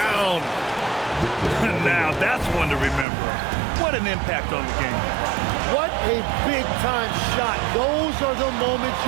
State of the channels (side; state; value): left; drops out; at 3.1 s